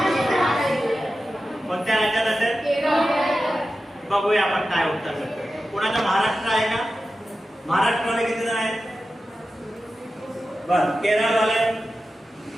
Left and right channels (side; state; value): both; normal; correlation 0.93